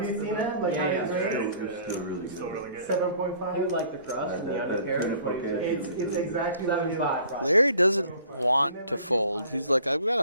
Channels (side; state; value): both; inverted; correlation -0.52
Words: you seen that? Like how Yeah, he grades? It's still really Still good. really good. 7.5. You like the crust and the That- undercarriage? that's What do you okay. say? It's exactly what you. 7.5 probably. Larry doesn't want to fold. He's like, I've got